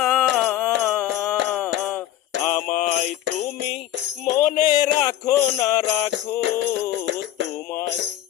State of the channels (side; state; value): right; quieter; 12.5 dB